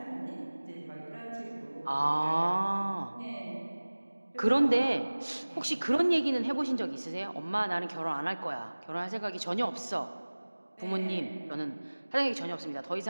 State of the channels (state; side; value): inverted; both; correlation -1.00